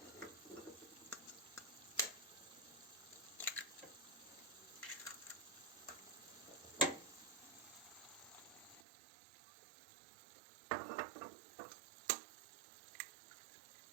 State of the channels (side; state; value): left; drops out; at 8.8 s